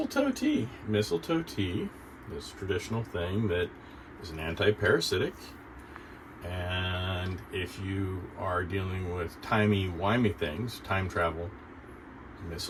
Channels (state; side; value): identical; both; correlation 1.00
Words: tea? Mistletoe tea is a traditional thing that is an anti-parasitic. And if you are dealing with timey-wimey things, time travel,